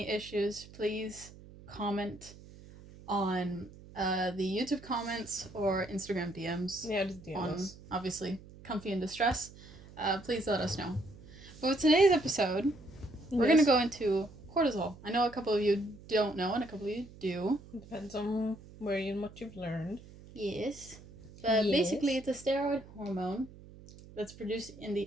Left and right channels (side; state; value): right; noise; hum, 19 dB below the sound